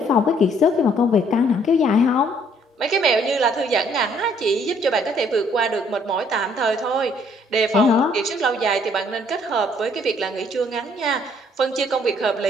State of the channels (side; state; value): both; normal; correlation 0.64